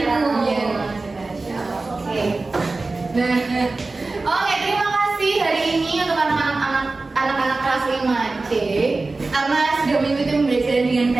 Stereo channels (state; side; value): quieter; left; 3.5 dB